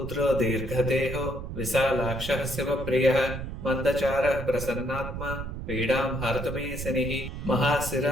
దీర్ఘదేహో విశాలాక్షః శివప్రియః మందచారః ప్రసన్నాత్మా పీడాం హర్తుమే శనిః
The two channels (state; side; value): noise; right; rumble, 7 dB below the sound